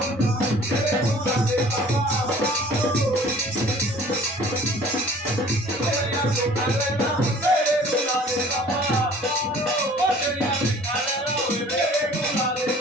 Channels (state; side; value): normal; both; correlation 0.50